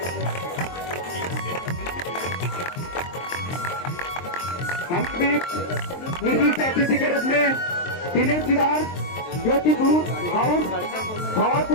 हम भी विशिष्ट अतिथि के रूप में दिनेश सिदार ज्योतिपुर हाउस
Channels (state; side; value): late; right; 23 ms